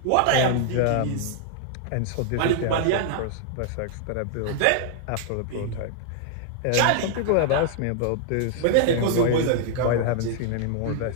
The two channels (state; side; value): different; both; correlation 0.00